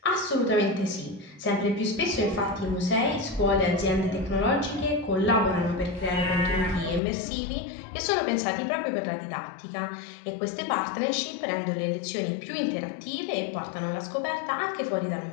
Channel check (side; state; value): right; drops out; at 7.0 s